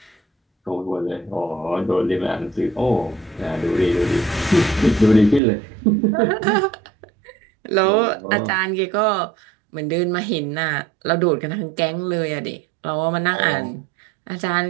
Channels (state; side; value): drops out; left; at 5.4 s